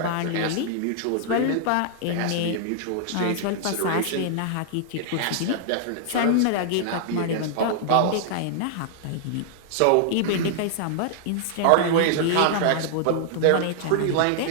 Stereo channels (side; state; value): both; different; correlation -0.01